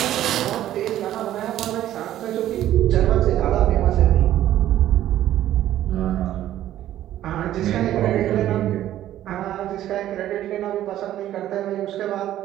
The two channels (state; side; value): quieter; left; 12.7 dB